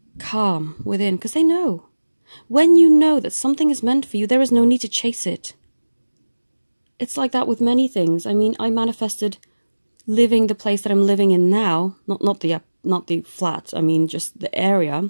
calm within, because they know. When you know that something is meant for you, there is no need to chase it. It's like that with many things. I mean, I manifested living the place that I'm living in now, not the flat, I mean just the area.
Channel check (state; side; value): inverted; both; correlation -1.00